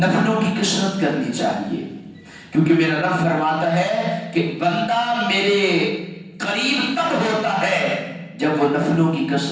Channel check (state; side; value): identical; both; correlation 1.00